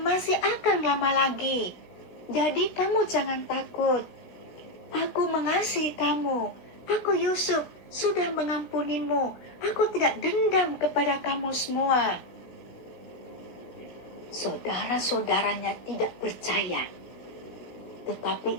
masih akan lama lagi. Jadi kamu jangan takut. Aku mengasihi kamu. Aku Yusuf sudah mengampunimu. Aku tidak dendam kepada kamu semua." Saudara-saudaranya tidak percaya.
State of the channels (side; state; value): right; late; 16 ms